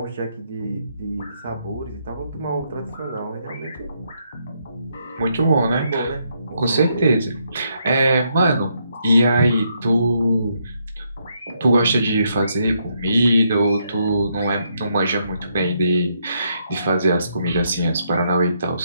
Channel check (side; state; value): both; inverted; correlation -0.76